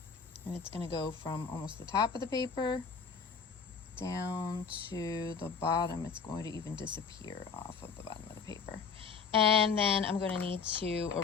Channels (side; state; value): right; quieter; 5.7 dB